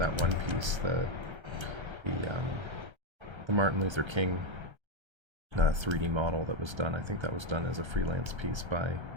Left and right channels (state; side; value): late; left; 1.3 ms